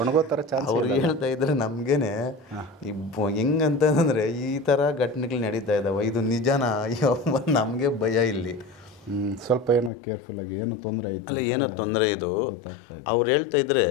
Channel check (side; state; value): right; drops out; at 9.9 s